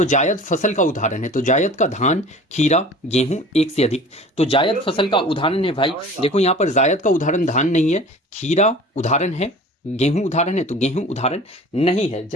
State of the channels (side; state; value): both; normal; correlation 0.42